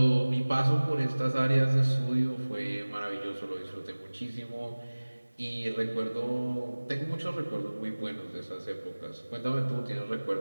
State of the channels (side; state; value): both; inverted; correlation -1.00